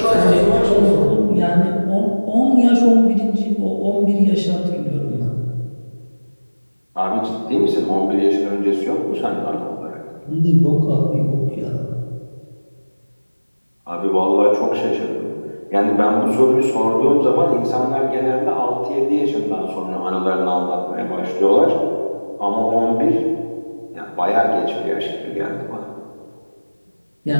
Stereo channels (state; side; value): inverted; both; correlation -1.00